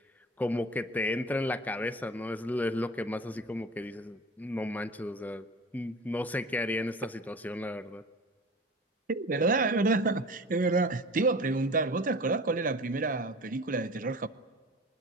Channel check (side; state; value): both; normal; correlation 0.39